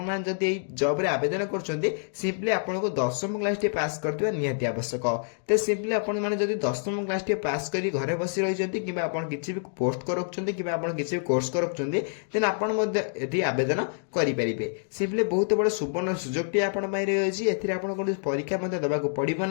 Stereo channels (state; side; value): silent; right; digital silence